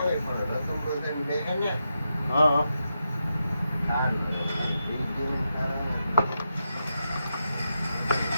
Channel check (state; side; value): inverted; both; correlation -0.86